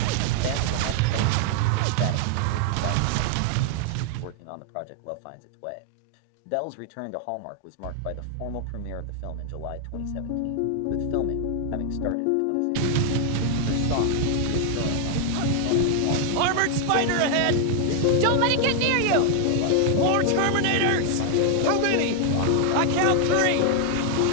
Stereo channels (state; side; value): different; both; correlation 0.00